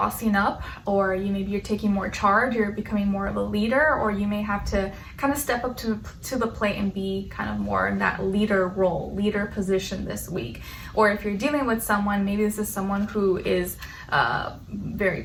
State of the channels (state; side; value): identical; both; correlation 1.00